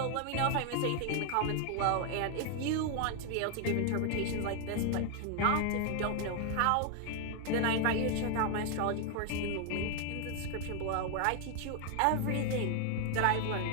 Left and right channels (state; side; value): different; both; correlation 0.00